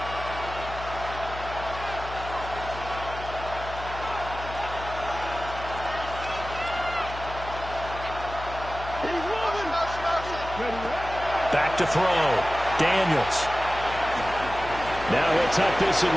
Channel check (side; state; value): left; noise; hum, 11 dB below the sound